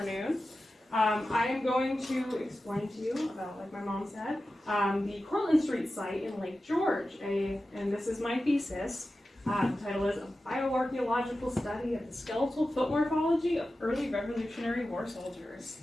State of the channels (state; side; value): normal; both; correlation 0.93